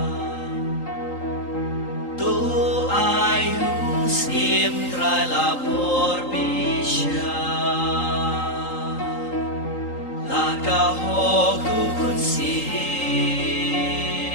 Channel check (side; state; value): right; late; 3.8 ms